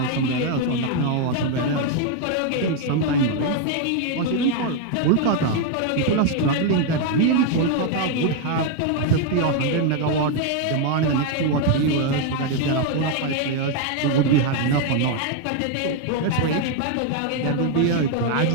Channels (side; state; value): both; different; correlation 0.01